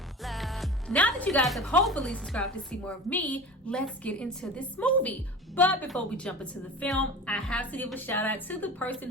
Now that you guys have hopefully subscribed to see more of me, let's get into this movie. But before we jump into the film, I have to give a shout out to the person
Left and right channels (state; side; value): normal; both; correlation 0.35